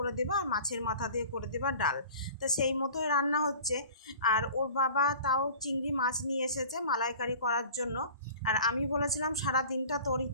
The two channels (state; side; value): inverted; both; correlation -0.43